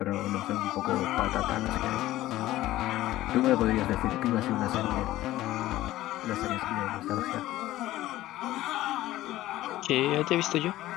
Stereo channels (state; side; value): quieter; right; 15.5 dB